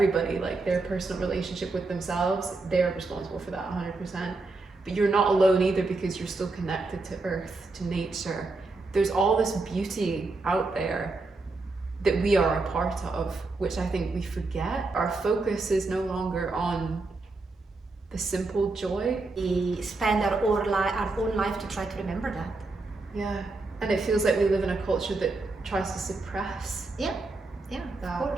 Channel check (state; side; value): quieter; left; 3.5 dB